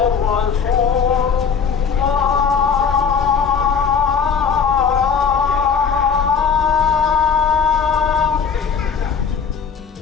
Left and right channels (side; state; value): right; quieter; 6.3 dB